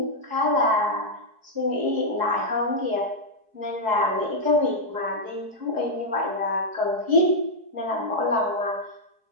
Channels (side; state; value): left; late; 4.7 ms